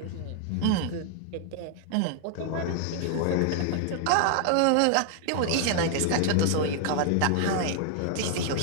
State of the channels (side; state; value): both; different; correlation 0.00